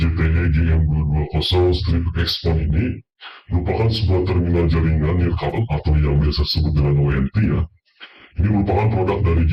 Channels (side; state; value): both; identical; correlation 1.00